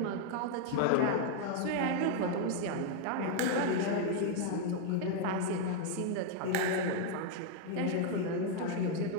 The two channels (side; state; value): both; different; correlation 0.01